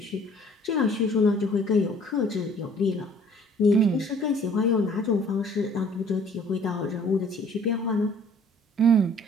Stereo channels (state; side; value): normal; both; correlation 0.55